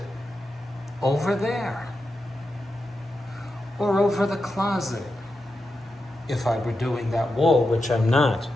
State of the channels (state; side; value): normal; both; correlation 0.89